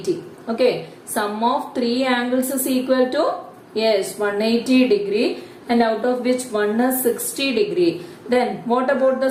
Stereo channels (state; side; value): identical; both; correlation 1.00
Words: Okay, sum of three angles is equal to, yes, 180 degree, and out of which one is 60 degree. Then what about